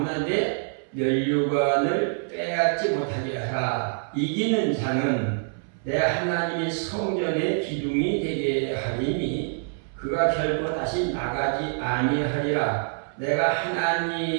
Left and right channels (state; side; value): silent; left; 61 dB below the other